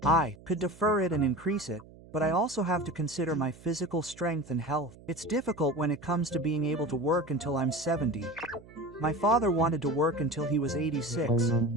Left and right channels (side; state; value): right; noise; hum, 21 dB below the sound